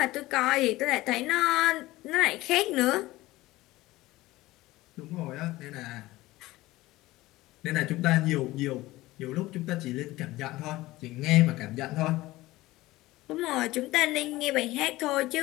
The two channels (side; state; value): right; quieter; 18.2 dB